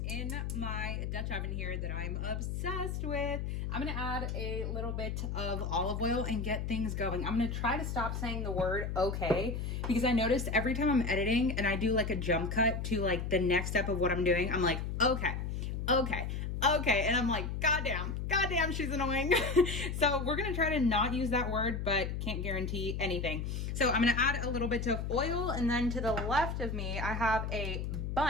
in my Dutch oven here that I'm obsessed with, I'm gonna add a little bit of olive oil and get things going. I'm gonna try to stop saying the word okay, because I noticed every time I'm editing and I do like a jump cut to like the next step of what I'm doing, I'm like, okay, and I'm like, goddamn, she's annoying. So we're gonna try to not use that word, but can't guarantee anything. So I'm gonna add a little bit of oil, and then to the left of me, I have a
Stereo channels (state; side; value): noise; left; hum, 3 dB below the sound